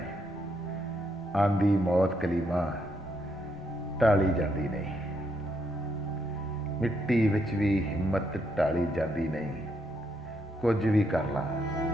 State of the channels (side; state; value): both; normal; correlation 0.77